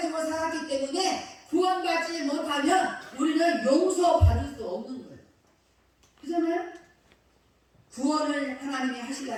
살았기 때문에 구원받지 못하면 우리는 용서받을 수 없는 거예요. 그렇잖아요? 구원을 하나님이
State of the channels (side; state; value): both; identical; correlation 1.00